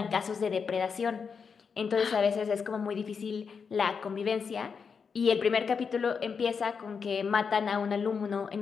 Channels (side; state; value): right; quieter; 5.9 dB